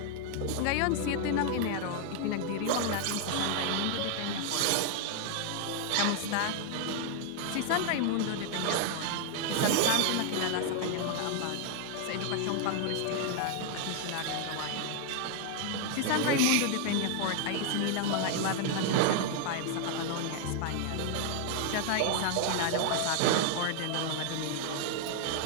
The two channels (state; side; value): different; both; correlation 0.00